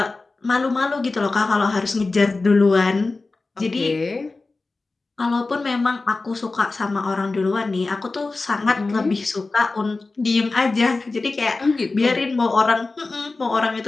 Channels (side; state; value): right; quieter; 3.6 dB